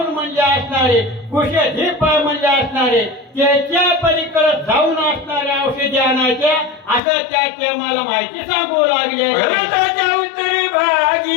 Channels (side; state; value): right; drops out; at 7.0 s